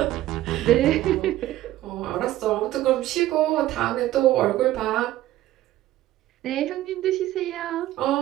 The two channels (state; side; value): quieter; left; 14.6 dB